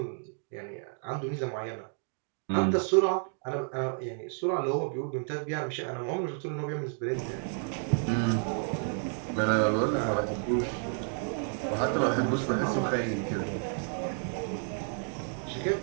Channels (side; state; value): left; silent; 55 dB below the other